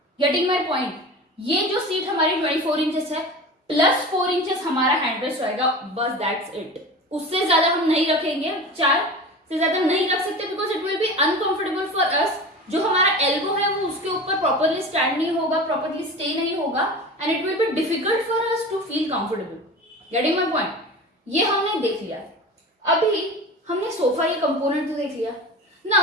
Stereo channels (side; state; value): both; normal; correlation 0.33